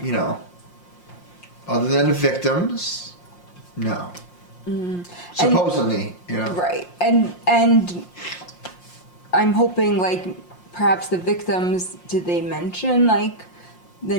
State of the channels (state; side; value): late; right; 5.6 ms